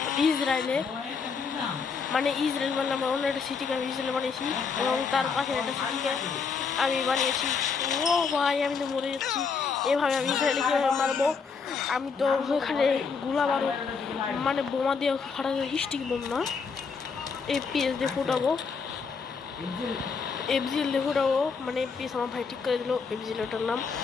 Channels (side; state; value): right; quieter; 5.4 dB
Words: ইসরায়েলে, মানে ইসরায়েল মানে আমার অন্য একটা সিটিকে আমি ইসরায়েল বানিয়েছি এবং তার পাশে একটা সিটিকে আমি বানিয়েছি। ও ভাই, আমি তো মরে যাচ্ছি। এভাবে আমি ইসরায়েলে কীভাবে মারবো? আমি তো ওখানে গুলা বারো মানে বোমা দিয়ে ফাটাতে, স্টিক বোম না, এপিএস দিয়ে ফুটাবো, এফজিএল দিয়ে ফুটাবো। মানে এপিএস আমার ভাই ঠিক করে দিল, এফজিএল ওটার নাম